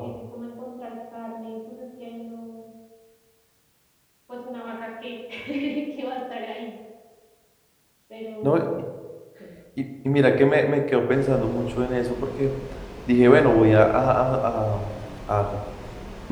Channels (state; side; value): identical; both; correlation 1.00